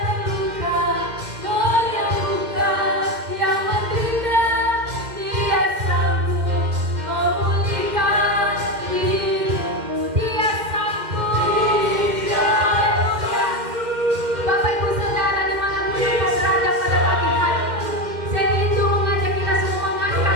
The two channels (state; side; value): late; left; 2.1 ms